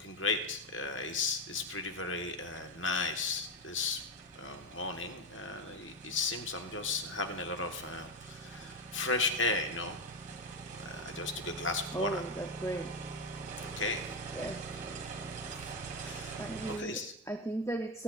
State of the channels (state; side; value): normal; both; correlation 0.11